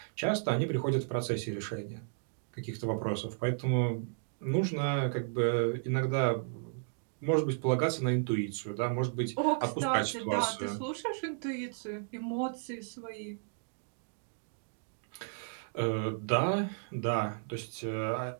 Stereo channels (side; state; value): left; silent; digital silence